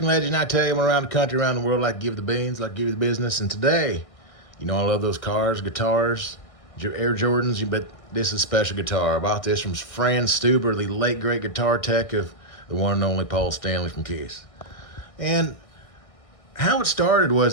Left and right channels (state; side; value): late; right; 1.6 ms